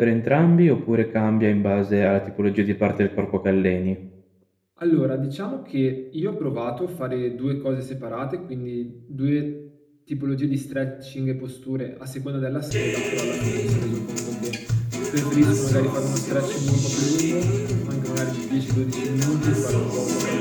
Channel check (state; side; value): identical; both; correlation 1.00